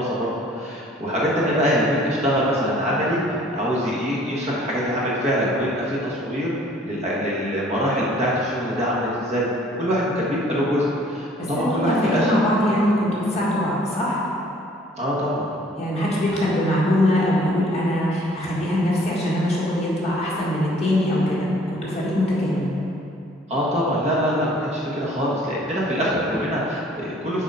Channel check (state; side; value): normal; both; correlation 0.56